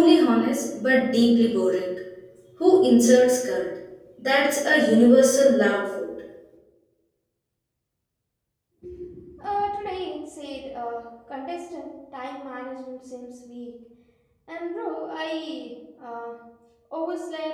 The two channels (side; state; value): both; identical; correlation 1.00